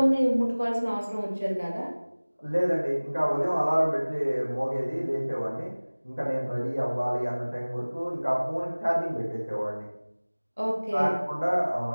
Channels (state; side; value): inverted; both; correlation -1.00